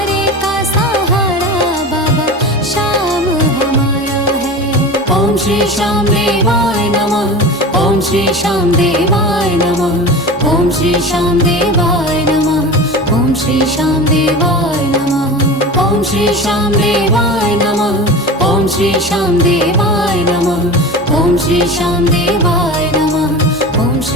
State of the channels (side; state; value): both; normal; correlation 0.31